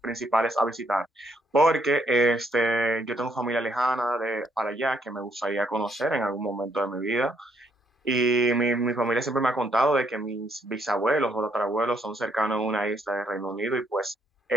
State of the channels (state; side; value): normal; both; correlation 0.71